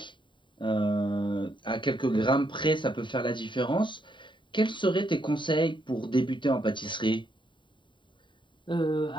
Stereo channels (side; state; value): right; late; 0.23 ms